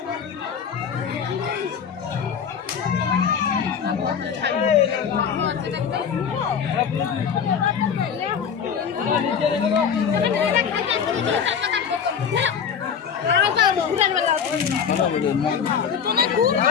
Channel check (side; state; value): right; quieter; 7.2 dB